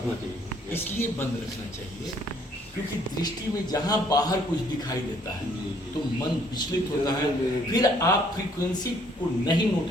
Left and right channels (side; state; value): both; normal; correlation 0.64